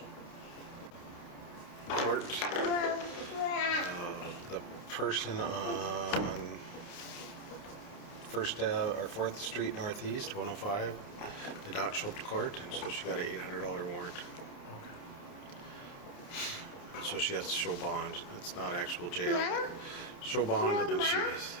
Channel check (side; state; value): right; late; 29 ms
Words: court. The person on 4th Street Northeast, 105, did not show up to court, and so she got an $800 warrant. So she has to show bond. It's not actual jail. But show bond, and then she